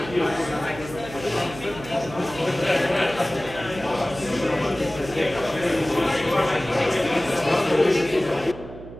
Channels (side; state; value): right; noise; hum, 14 dB below the sound